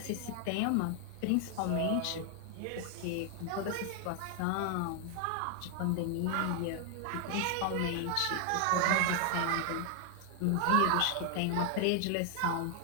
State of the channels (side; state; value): both; different; correlation 0.00